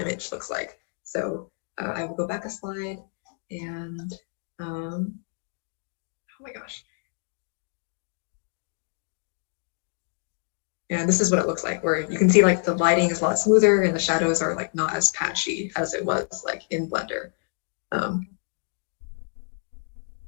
looks like. So I will go back a slide and oh my gosh. And this is what it looks like, where you can see like the lighting is a lot smoother and the shadows are like not as patchy as it was like in Blender.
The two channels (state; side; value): silent; right; 60 dB below the other